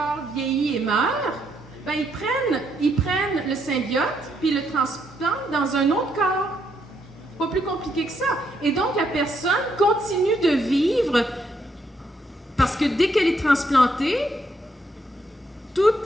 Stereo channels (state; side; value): normal; both; correlation 0.75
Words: vieillit et meurt, ben, ils prennent le symbiote puis le transplantent dans un autre corps. Pas plus compliqué que ça. Et donc, la personne continue de vivre parce que dès qu'elle est transplantée,